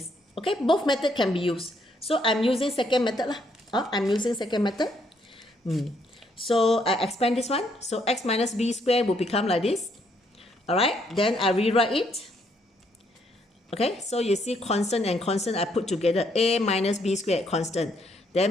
Okay, both methods can be used. So I'm using second method lah. I'm using second method. So I expand this one. So x minus b squared will become like this. Alright, then I rewrite it. Okay, so you see constant and constant I put together. A minus b squared, constant.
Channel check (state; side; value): normal; both; correlation 0.71